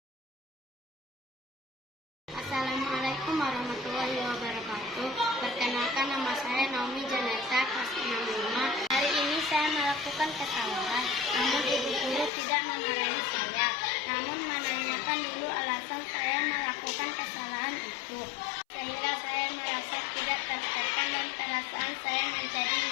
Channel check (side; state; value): right; drops out; at 12.3 s